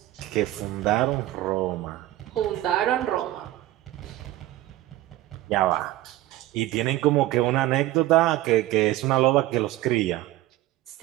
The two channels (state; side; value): quieter; left; 16.0 dB